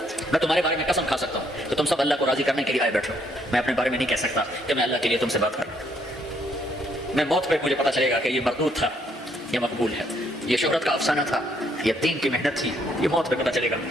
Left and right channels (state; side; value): normal; both; correlation 0.70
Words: میں تمہارے بارے میں قسم کھا سکتا ہوں کہ تم سب اللہ کو راضی کرنے کے لیے آئے بیٹھو، میں اپنے بارے میں نہیں کہہ سکتا کہ میں اللہ کے لیے تم سے بات کر رہا ہوں۔ میں موت پہ مجھے پتا چلے گا کہ یہ مردود تھا، یہ مقبول ہے، یہ شہرت کا افسانہ تھا، یہ دین کی محنت تھی، یہ موت پہ پتا چلے گا،